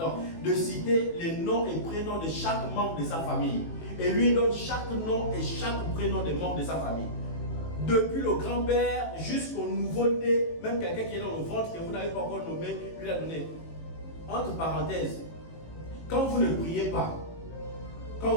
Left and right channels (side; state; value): right; late; 18 ms